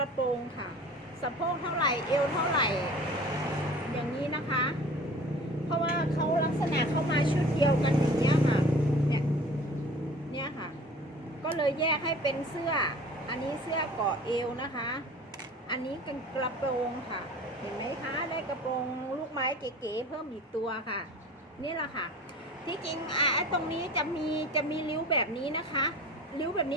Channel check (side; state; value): both; normal; correlation 0.43